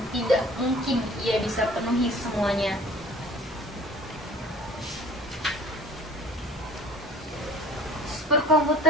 tidak mungkin ia bisa penuhi semuanya.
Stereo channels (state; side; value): normal; both; correlation 0.43